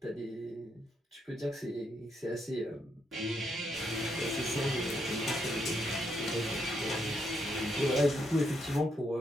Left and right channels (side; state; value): both; normal; correlation 0.77